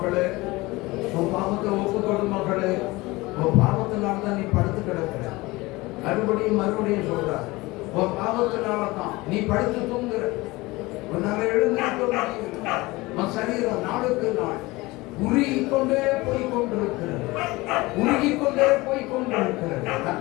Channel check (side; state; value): right; quieter; 21.5 dB